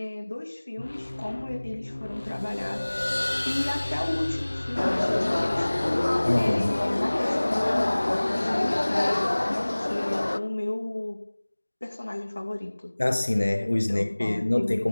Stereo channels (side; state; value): both; inverted; correlation -1.00